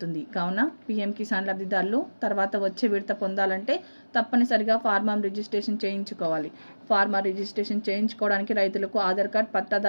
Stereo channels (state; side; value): inverted; both; correlation -1.00